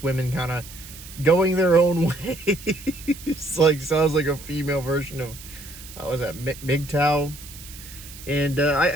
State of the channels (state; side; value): noise; right; hiss, 16 dB below the sound